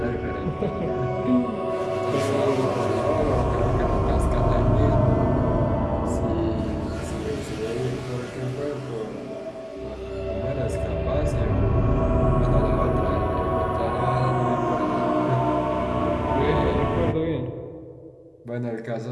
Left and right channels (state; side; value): identical; both; correlation 1.00